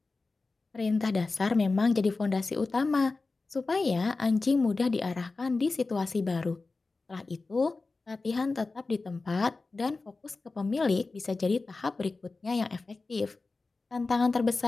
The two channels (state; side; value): quieter; right; 3.7 dB